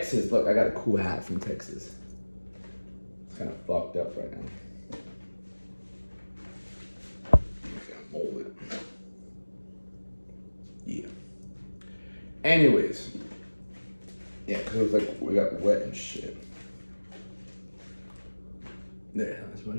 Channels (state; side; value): inverted; both; correlation -1.00